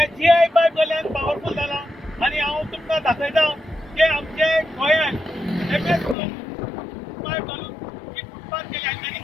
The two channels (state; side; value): drops out; right; at 6.2 s